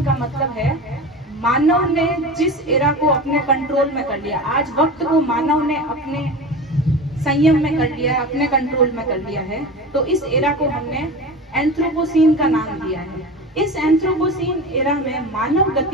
का मतलब है मानव ने जिस एरा को अपने कंट्रोल में कर लिया, आज वक्त को मानव ने अपने संयम में कर लिया है, अपने कंट्रोल में कर लिया है। तो इस एरा को हमने एंथ्रोपोसीन का नाम दिया है। इस एंथ्रोपोसीन एरा में मानव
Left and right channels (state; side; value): normal; both; correlation 0.30